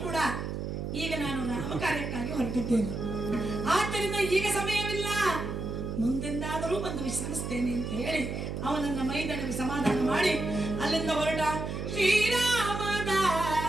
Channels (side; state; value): right; noise; hum, 4 dB below the sound